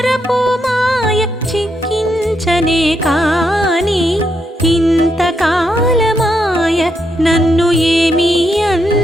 మాయ చిక్కించనే కాని ఇంతకాలమాయ నన్ను ఏమీ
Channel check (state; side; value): normal; both; correlation 0.80